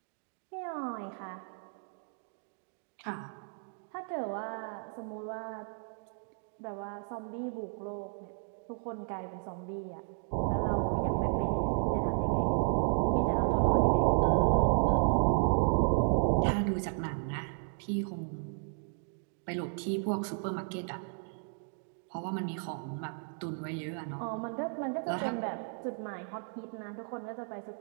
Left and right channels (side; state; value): left; silent; 55 dB below the other